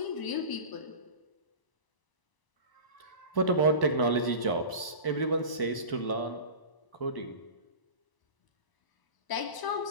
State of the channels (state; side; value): late; right; 1.0 ms